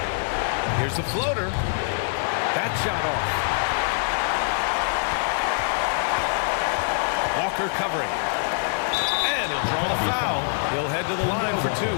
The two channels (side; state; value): right; silent; digital silence